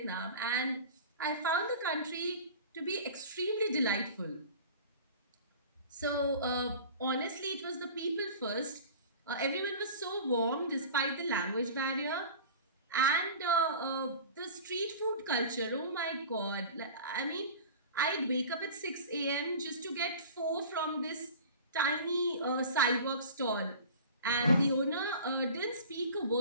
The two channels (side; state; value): both; inverted; correlation -0.39